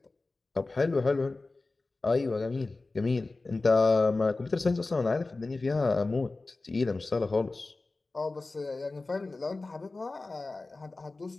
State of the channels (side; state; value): right; quieter; 3.4 dB